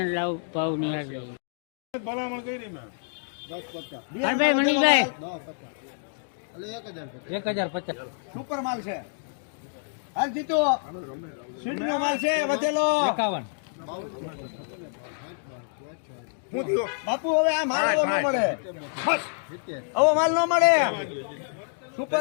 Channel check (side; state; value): right; silent; digital silence